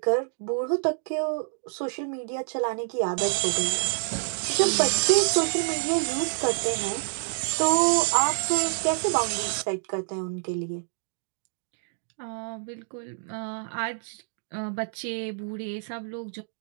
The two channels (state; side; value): silent; left; 60 dB below the other